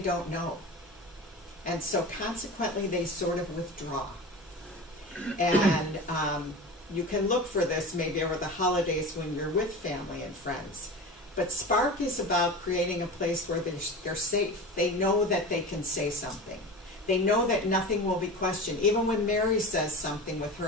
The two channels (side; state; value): both; normal; correlation 0.31